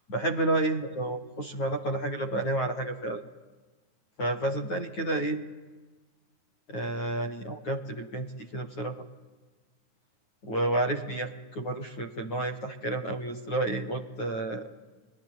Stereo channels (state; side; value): late; right; 9.4 ms